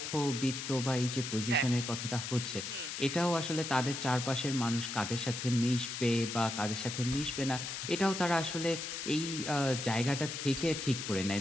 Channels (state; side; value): noise; left; hiss, 5 dB below the sound